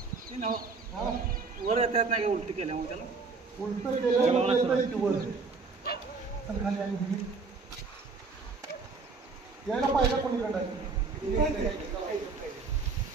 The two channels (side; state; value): left; quieter; 4.4 dB